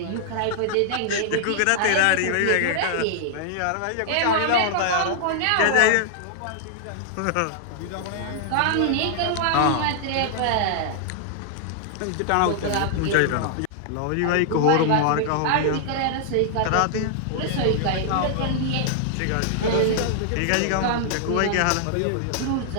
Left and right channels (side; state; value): both; different; correlation -0.01